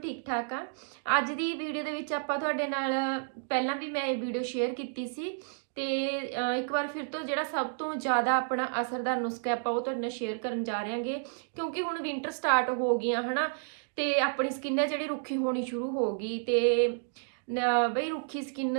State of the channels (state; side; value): silent; left; digital silence